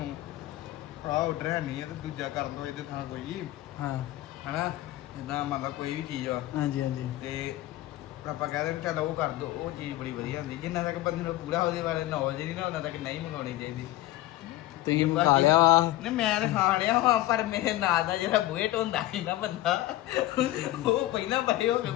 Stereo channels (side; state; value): right; quieter; 15.9 dB